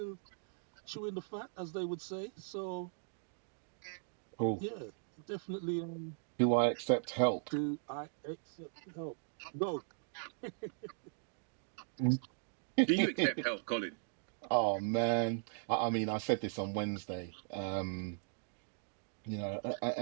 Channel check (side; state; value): left; silent; digital silence